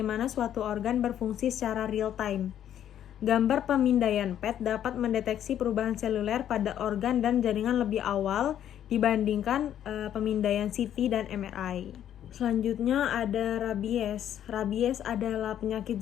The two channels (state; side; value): quieter; right; 10.5 dB